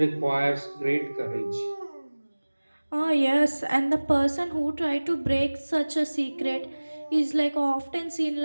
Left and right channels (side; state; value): both; inverted; correlation -1.00